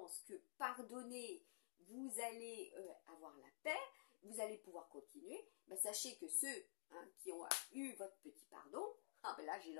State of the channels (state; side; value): silent; right; digital silence